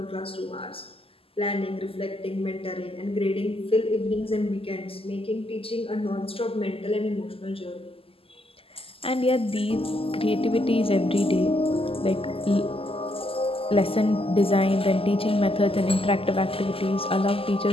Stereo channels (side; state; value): right; late; 0.27 ms